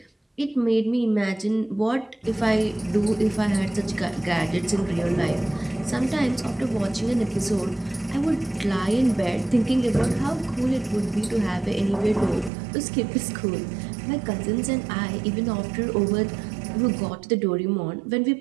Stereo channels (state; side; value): drops out; left; at 12.5 s